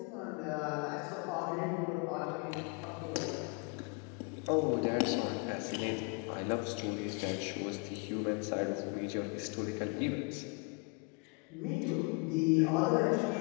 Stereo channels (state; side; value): quieter; right; 33.3 dB